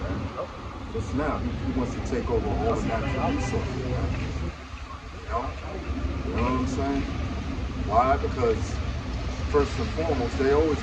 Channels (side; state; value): both; identical; correlation 1.00